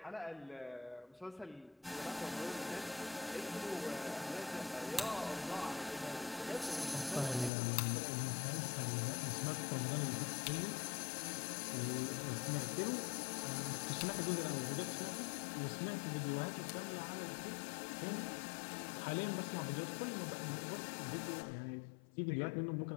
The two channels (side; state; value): right; drops out; at 7.5 s